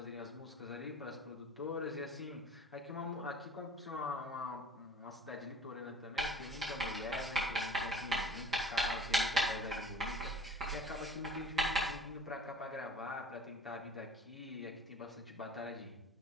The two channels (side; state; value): both; normal; correlation 0.46